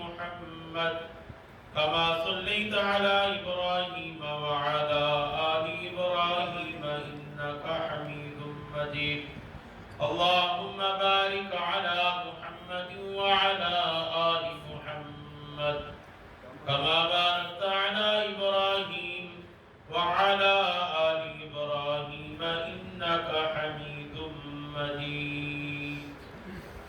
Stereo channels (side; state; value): both; identical; correlation 1.00